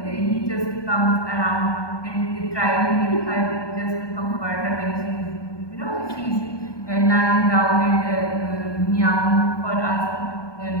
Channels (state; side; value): late; right; 1.2 ms